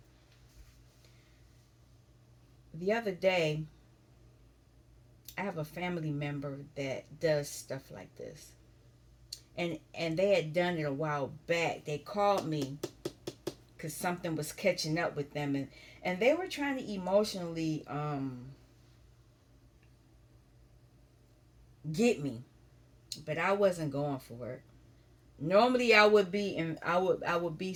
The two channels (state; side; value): identical; both; correlation 1.00